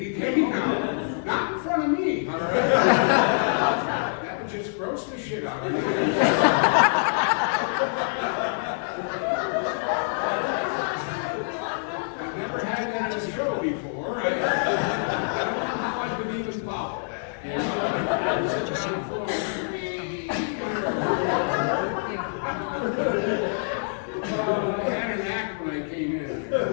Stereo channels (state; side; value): silent; right; 57 dB below the other